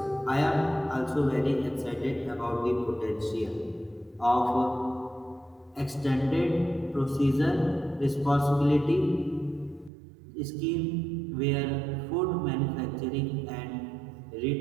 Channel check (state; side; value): drops out; left; at 9.9 s